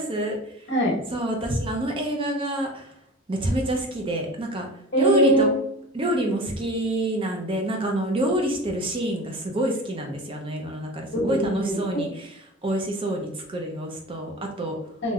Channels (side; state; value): both; normal; correlation 0.36